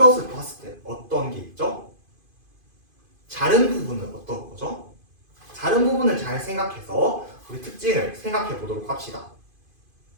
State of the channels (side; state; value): left; late; 2.5 ms